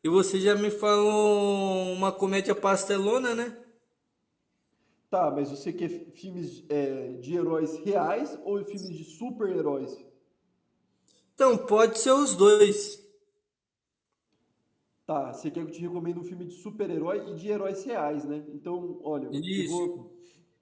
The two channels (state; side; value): identical; both; correlation 1.00